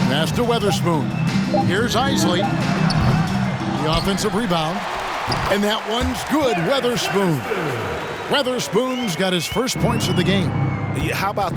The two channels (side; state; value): both; identical; correlation 1.00